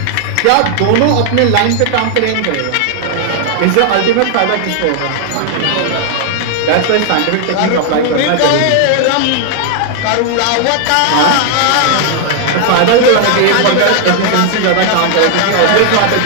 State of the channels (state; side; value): different; both; correlation 0.00